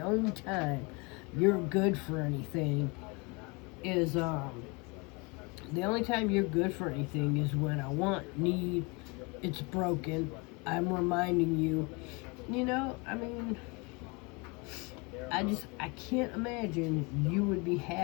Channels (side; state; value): right; quieter; 29.0 dB